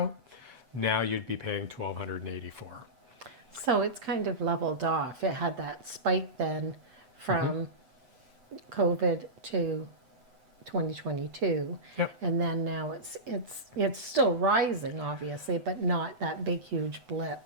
now you'd be paying $1,284. So it's kind of leveled off. It had that spike then from COVID to 2022. Yep. And then now it's still rising, obviously, but not that big huge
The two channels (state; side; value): late; left; 8.0 ms